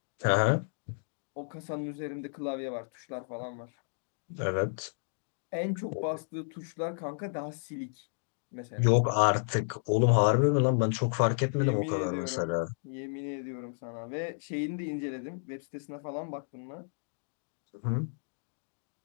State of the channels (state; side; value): silent; right; digital silence